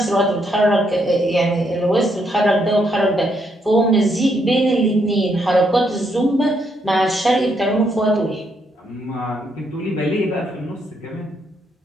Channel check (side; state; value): both; normal; correlation 0.75